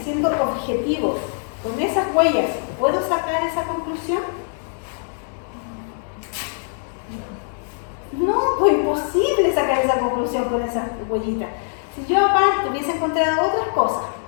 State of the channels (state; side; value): silent; right; digital silence